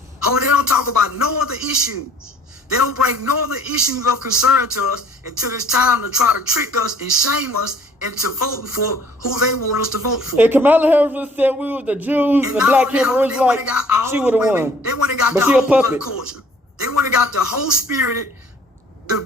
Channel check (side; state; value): both; normal; correlation 0.55